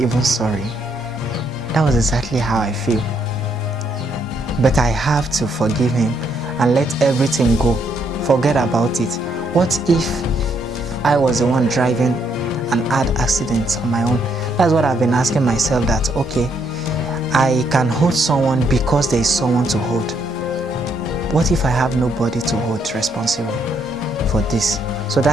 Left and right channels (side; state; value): both; normal; correlation 0.73